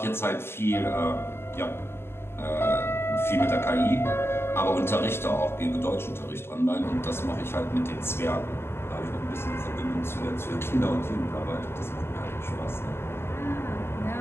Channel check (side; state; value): right; late; 0.12 ms